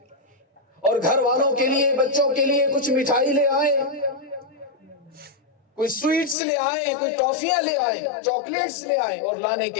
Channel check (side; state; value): right; drops out; at 6.4 s